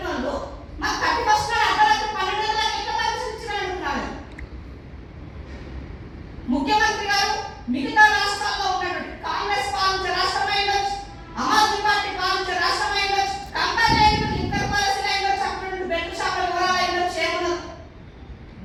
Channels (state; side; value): identical; both; correlation 1.00